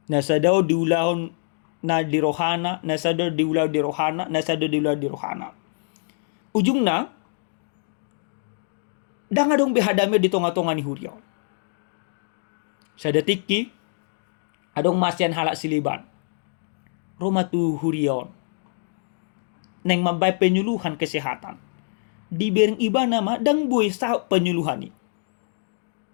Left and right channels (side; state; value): right; silent; digital silence